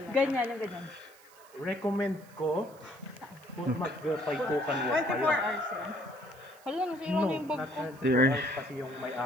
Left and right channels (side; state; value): right; noise; hiss, 26 dB below the sound